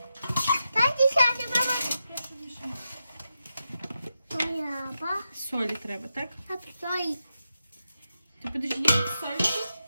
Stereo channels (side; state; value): both; inverted; correlation -0.88